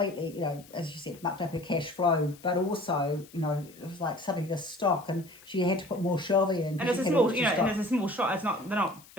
you know, as you said, mucked up her cash flow, but also, you know, it was like suddenly the stock, and she had to put more shelving in. And it's a small, you know, and it's a small shop. They're not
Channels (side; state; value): left; noise; hiss, 23 dB below the sound